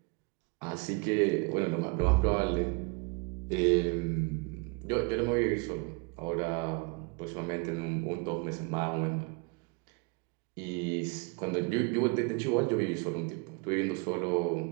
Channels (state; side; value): quieter; left; 29.8 dB